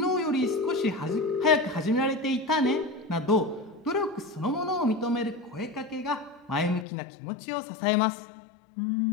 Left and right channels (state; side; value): drops out; right; at 6.9 s